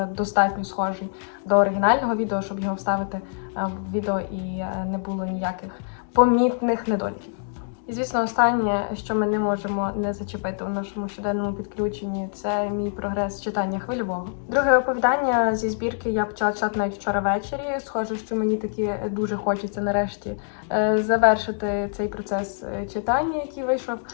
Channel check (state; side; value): silent; right; digital silence